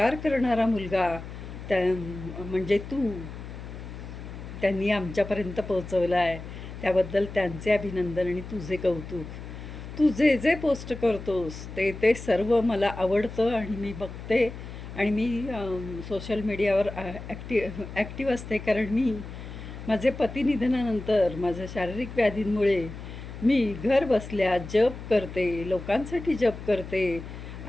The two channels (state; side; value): noise; left; hum, 11 dB below the sound